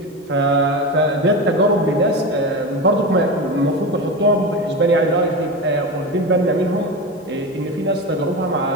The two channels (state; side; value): normal; both; correlation 0.22